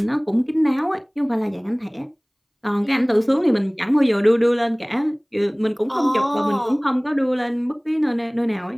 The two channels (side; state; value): both; identical; correlation 1.00